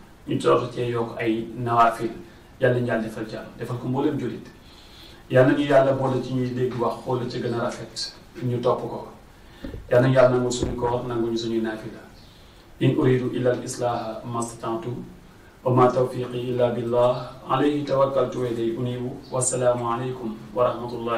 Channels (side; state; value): both; identical; correlation 1.00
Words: ñu toog cee yokk ay nawaafil yàlla nañu yàlla defal jàmm defal ko mboolem jullit yàlla nañu yàlla boole ci ñuy dégg wax xool la ci gën a rafet ñu topp ko yàlla nañu yàlla nangul suñu koor nanguñu suñuy naafila in uridu illa al islaha mastata'tu wa ma tawfiqi illa billah alayhi tawakkaltu wa ilayhi unibu wassalaamu alaykum wa